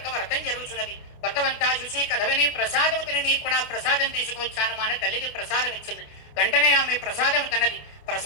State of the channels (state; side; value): late; right; 28 ms